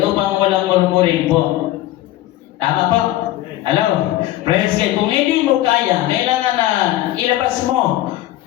upang walang murmuring po. Tama po? Hello? Praise God. Kung hindi mo kaya, kailangan na ilabas mo,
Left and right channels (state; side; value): quieter; right; 15.2 dB